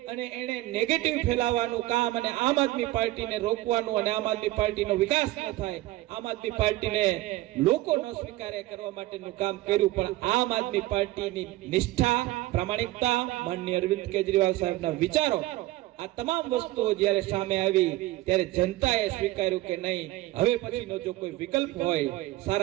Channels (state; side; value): quieter; left; 17.6 dB